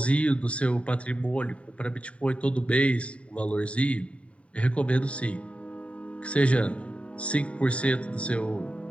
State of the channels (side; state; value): right; late; 0.064 ms